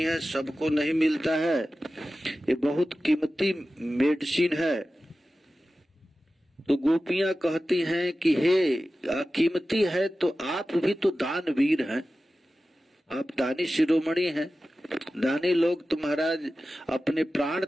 है, सबको नहीं मिलता है, ये बहुत कीमती मेडिसिन है। तो गोपियां कहती हैं कि हे कीमती है तो आप भी तो दानवीर हैं, आप दानी शिरोमणि हैं, दानी लोग तो महाराज अपने प्राण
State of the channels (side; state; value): both; normal; correlation 0.95